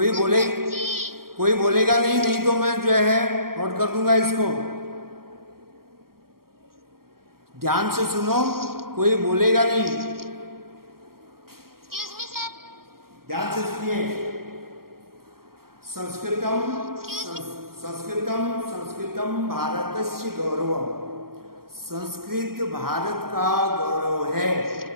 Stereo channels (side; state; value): left; late; 0.93 ms